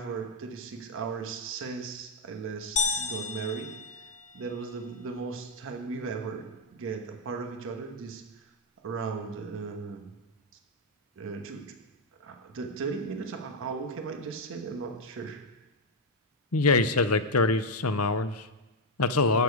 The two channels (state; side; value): normal; both; correlation 0.00